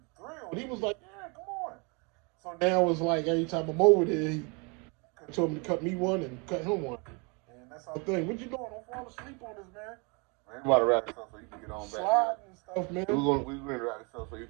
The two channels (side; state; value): left; quieter; 31.8 dB